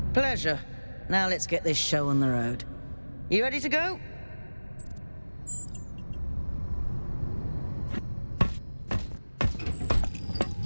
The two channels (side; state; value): both; inverted; correlation -1.00